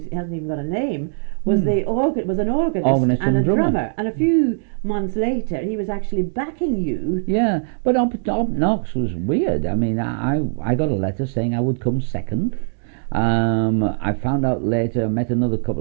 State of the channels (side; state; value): left; silent; digital silence